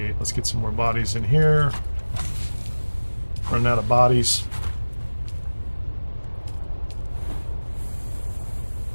Let's get some more bodies in here. Running out of bodies.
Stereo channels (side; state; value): both; inverted; correlation -1.00